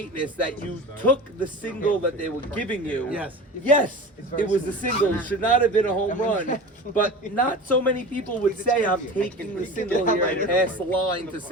that you took the single that they were giving you. Yes, it was a single. It should not have been a home run. But not so many people would say I'm taking the single here and pass the line to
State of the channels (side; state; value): both; normal; correlation 0.34